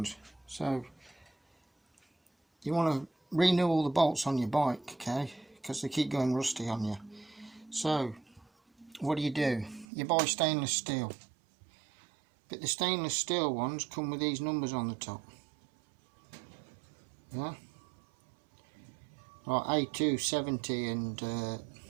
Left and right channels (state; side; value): drops out; left; at 9.9 s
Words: So you want to renew all the bolts on your bike, okay, because they keep going rusty on you. So what do? You buy stainless steel, but the stainless steel ones come with these numbers on the top. Yeah, like A270 and